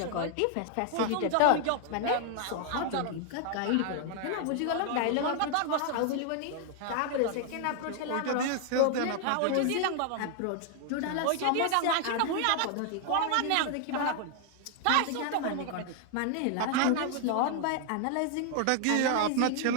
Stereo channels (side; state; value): both; different; correlation 0.00